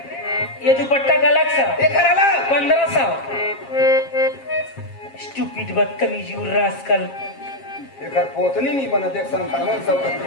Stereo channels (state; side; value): late; right; 7.4 ms